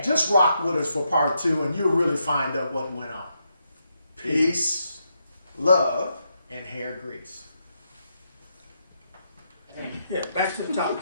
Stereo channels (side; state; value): both; inverted; correlation -0.81